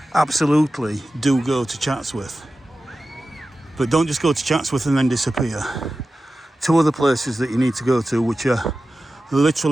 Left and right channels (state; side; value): normal; both; correlation 0.94